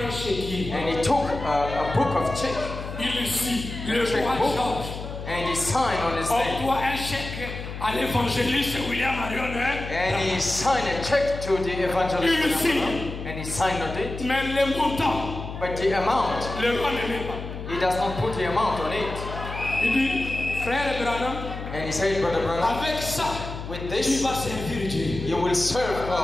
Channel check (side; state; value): left; noise; hum, 8 dB below the sound